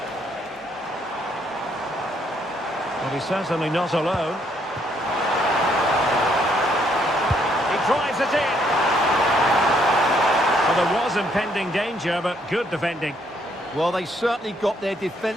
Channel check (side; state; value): both; normal; correlation 0.70